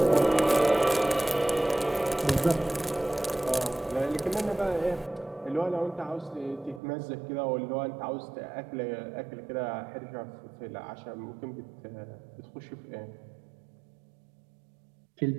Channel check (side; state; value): left; drops out; at 6.8 s